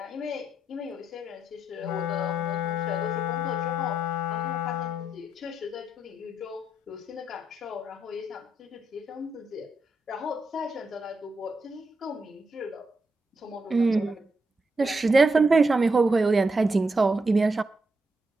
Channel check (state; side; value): normal; both; correlation 0.81